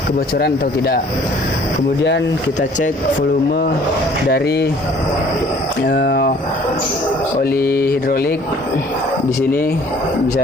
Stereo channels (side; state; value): both; normal; correlation 0.55